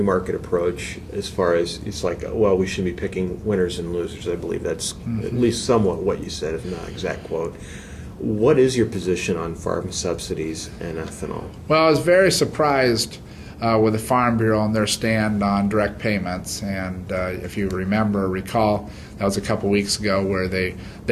market approach as far as it's like, well, we should be picking winners and losers. I believe that's at least somewhat what you said, if not exact quote. What is your position on farm subsidies and ethanol? Well, I was very surprised with the Farm Bureau and their stand on direct payments. And if you recall, that was a couple weeks ago where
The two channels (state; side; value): identical; both; correlation 1.00